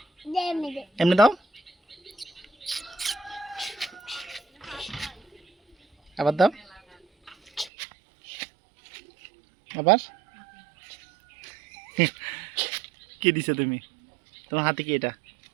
এমনি দাও, আবার দাও, আবার। কি দিছো তুমি? তোমার হাতে কি এটা?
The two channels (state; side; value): drops out; left; at 7.7 s